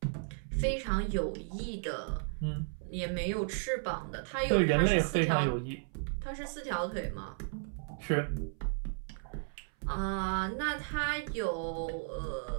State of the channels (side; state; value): left; silent; 55 dB below the other